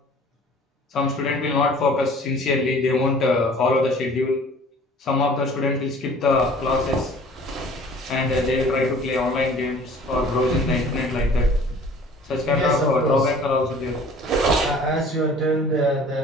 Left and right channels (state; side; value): normal; both; correlation 0.49